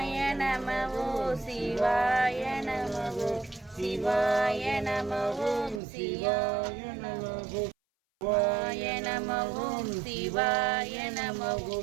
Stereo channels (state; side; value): drops out; left; at 5.8 s